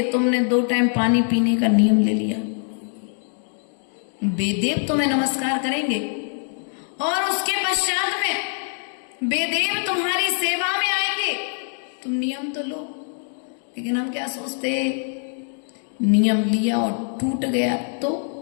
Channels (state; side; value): silent; right; 58 dB below the other